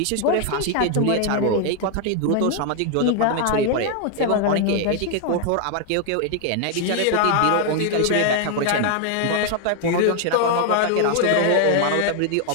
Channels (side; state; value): both; different; correlation 0.00